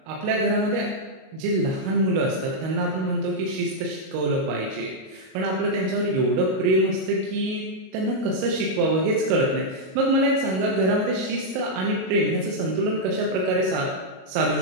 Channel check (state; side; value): late; left; 37 ms